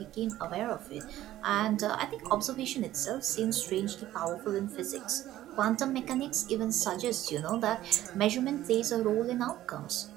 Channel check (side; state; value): left; quieter; 14.0 dB